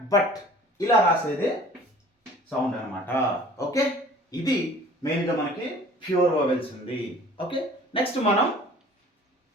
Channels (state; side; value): normal; both; correlation 0.48